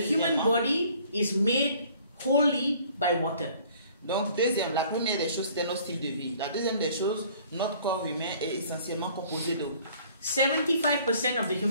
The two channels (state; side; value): inverted; both; correlation -0.55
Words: body is made wholly by water. Donc deuxième, la première des choses, c'est notre style de vie. La deuxième des choses, notre corps humain est essentiellement composé d'eau. 75% of the